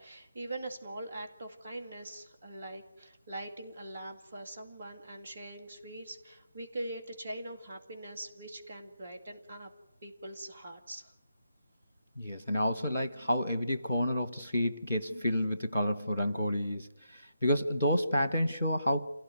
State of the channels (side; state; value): both; inverted; correlation -0.81